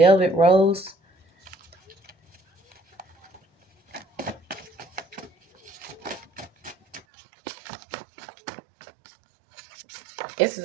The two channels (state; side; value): drops out; left; at 7.0 s